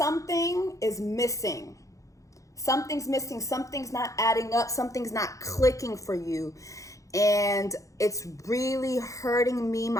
is missing. Something's missing. Something's not adding up. Something's not clicking for you. And it's really hurting me,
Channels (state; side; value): late; right; 0.16 ms